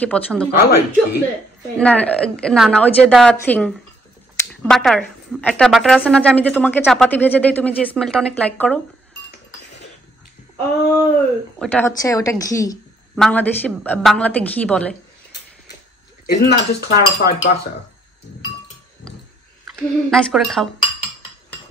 পছন্দ করে। I like ghee. না না না, ওই যে দা থিং বাটার, একটা বাটার আছে না যে আমি যে তোমাকে চাপাতি ভেজে দেই, তুমি যে স্মেলটা অনেক লাইক করো, ওটা হচ্ছে ওটা ঘি, বাংলাদেশি বাংলাতে ঘি বলে। Isn't that just clarified butter? Nice করে খাও।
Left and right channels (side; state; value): both; normal; correlation 0.68